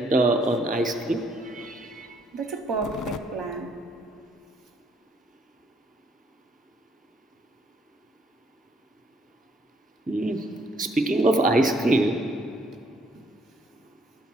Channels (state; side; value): normal; both; correlation 0.67